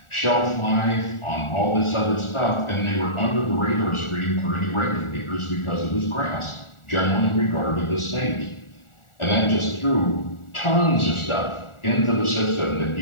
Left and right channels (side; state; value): right; late; 1.4 ms